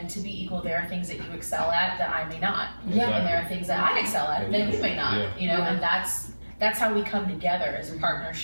to be equal, there are things that you excel at that I may not. And there are things that I excel at that you may not, you know, and that's how we come together as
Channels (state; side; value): inverted; both; correlation -1.00